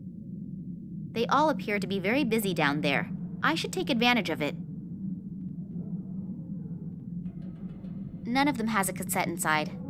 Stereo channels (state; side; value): identical; both; correlation 1.00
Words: They all appear to be very busy down there. I should take advantage of it. None of them has a cassette inside.